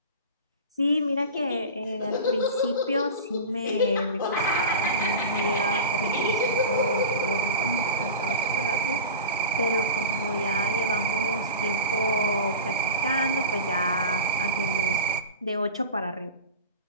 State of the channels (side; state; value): both; inverted; correlation -0.30